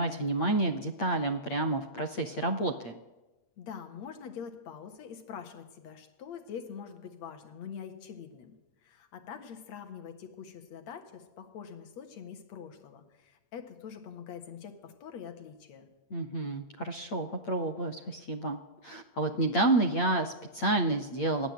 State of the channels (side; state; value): right; late; 8.6 ms